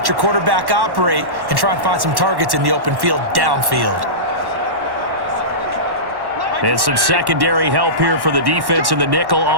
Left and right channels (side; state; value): left; late; 1.1 ms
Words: your quarterback operate, and try and find some targets in the open field downfield. And some secondary help here for the defense in the nickel